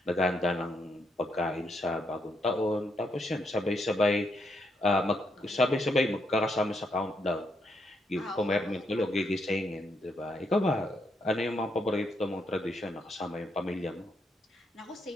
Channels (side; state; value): both; normal; correlation 0.77